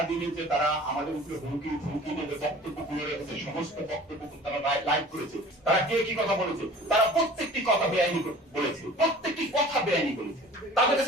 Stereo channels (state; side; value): normal; both; correlation 0.45